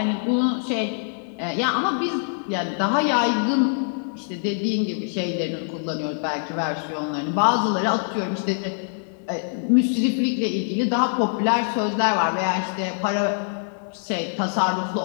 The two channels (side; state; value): right; silent; digital silence